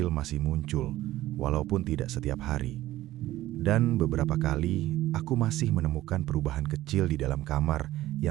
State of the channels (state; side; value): quieter; left; 15.4 dB